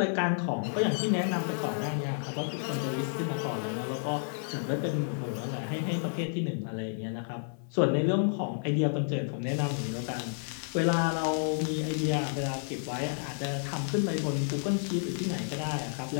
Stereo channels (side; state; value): right; silent; 57 dB below the other